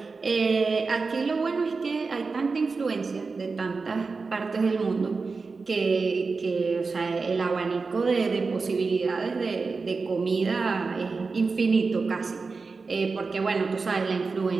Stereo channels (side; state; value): left; quieter; 4.3 dB